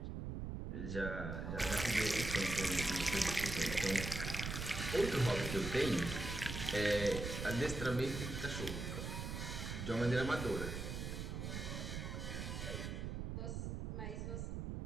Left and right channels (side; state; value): right; noise; rumble, 4 dB below the sound